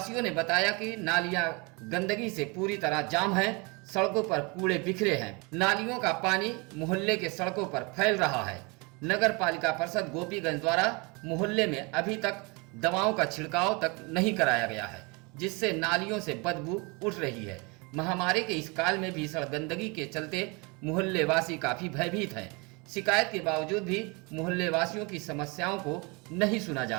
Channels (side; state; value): left; quieter; 28.9 dB